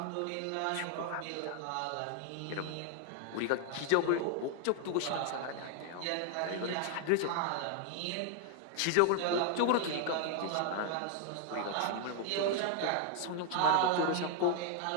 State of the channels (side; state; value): both; different; correlation 0.00